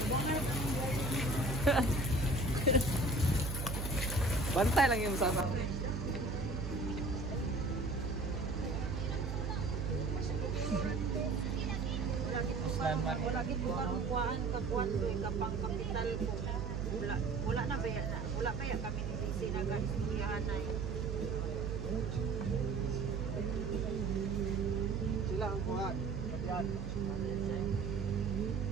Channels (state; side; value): noise; right; hum, 3 dB below the sound